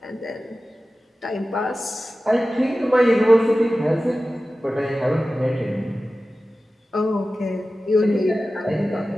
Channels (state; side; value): normal; both; correlation 0.95